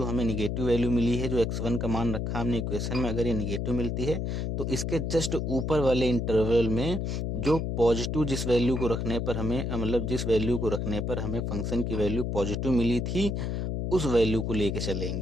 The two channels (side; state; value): left; noise; hum, 1 dB below the sound